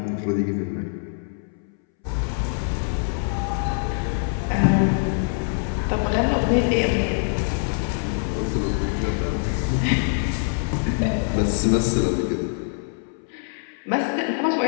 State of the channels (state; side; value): silent; right; 63 dB below the other